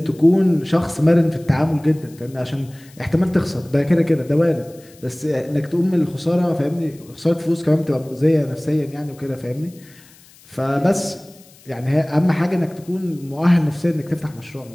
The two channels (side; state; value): left; noise; hiss, 26 dB below the sound